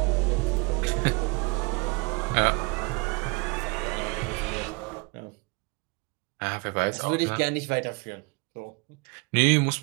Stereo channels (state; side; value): quieter; left; 28.1 dB